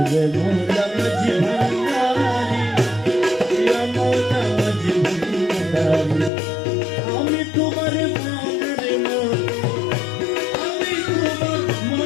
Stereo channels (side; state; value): right; drops out; at 6.3 s